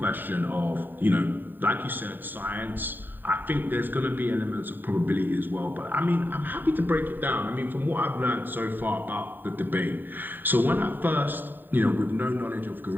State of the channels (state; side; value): late; left; 0.092 ms